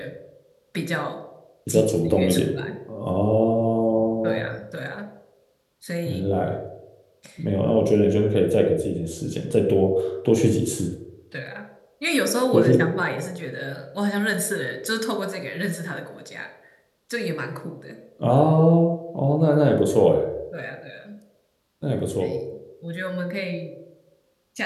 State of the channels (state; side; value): identical; both; correlation 1.00